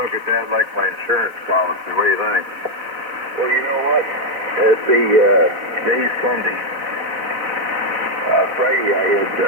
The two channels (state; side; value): late; left; 4.0 ms